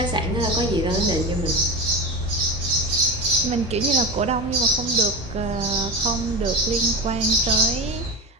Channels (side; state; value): both; normal; correlation 0.23